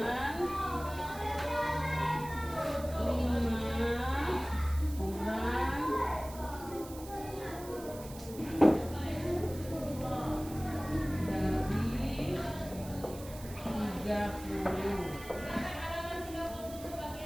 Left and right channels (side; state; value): right; noise; hiss, 16 dB below the sound